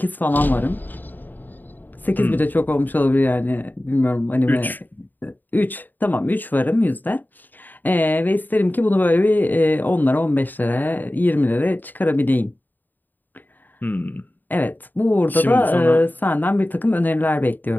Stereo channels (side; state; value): right; late; 0.088 ms